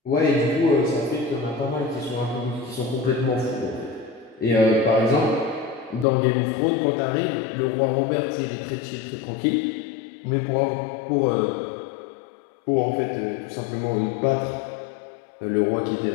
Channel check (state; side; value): drops out; right; at 6.1 s